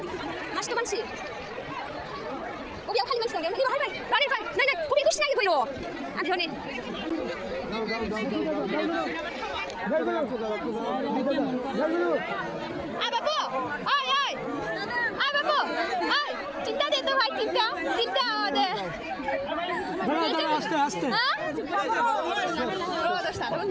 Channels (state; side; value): identical; both; correlation 1.00